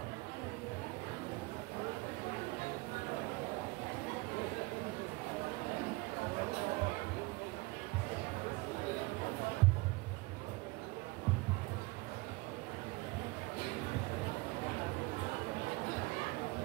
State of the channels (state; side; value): quieter; left; 23.6 dB